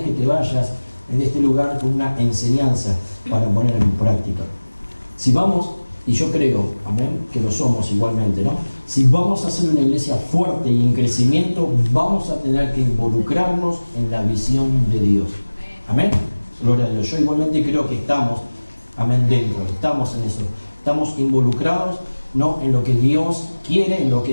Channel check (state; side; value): inverted; both; correlation -1.00